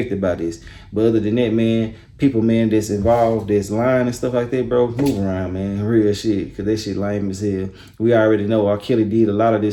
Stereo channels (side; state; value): both; identical; correlation 1.00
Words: by this. But other than that, man, people, man, that's involved, that's lying and stuff like that, bro, move around, man. Real shit, because that shit lame as hell. We already know R. Kelly did a lot of